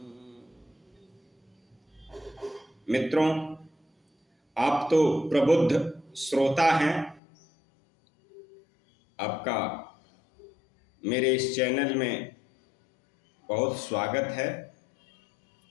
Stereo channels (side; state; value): right; drops out; at 7.2 s